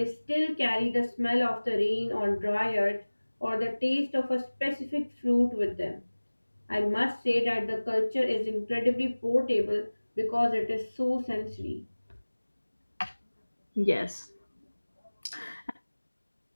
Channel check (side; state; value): both; inverted; correlation -1.00